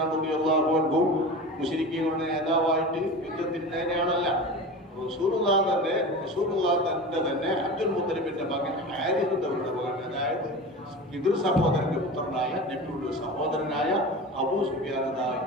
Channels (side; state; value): both; normal; correlation 0.31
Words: റളിയല്ലാഹു അൻഹു മുശ്രിക്കീങ്ങളുടെ നേതാവായിട്ട് യുദ്ധത്തിനാണല്ല. റസൂലുള്ളാഹി തന്റെ തന്നെ അബ്ദുൽ മുത്തലിബിന്റെ മകൻ ഹാരിസ് എന്നവരുടെ മകൻ, അതായത് പിതൃ സഹോദരന്റെ പുത്രനായ നബിയുടെ സഹോദരനായ അബൂ സുഫിയാൻ.